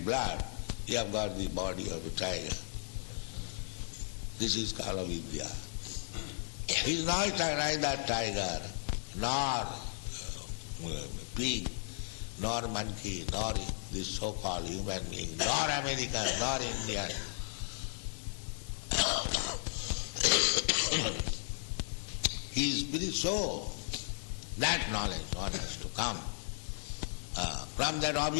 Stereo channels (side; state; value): right; silent; digital silence